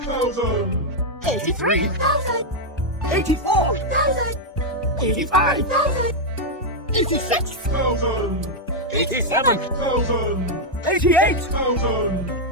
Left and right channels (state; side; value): normal; both; correlation -0.01